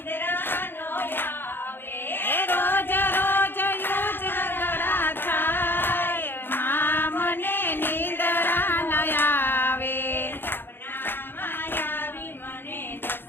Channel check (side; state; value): right; late; 0.10 ms